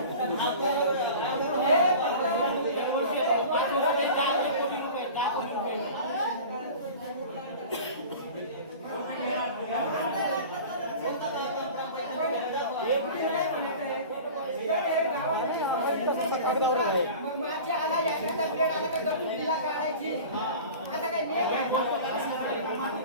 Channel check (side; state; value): both; inverted; correlation -0.38